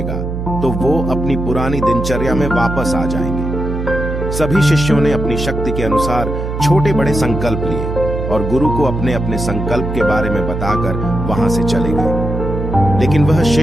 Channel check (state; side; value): noise; right; hum, 4 dB below the sound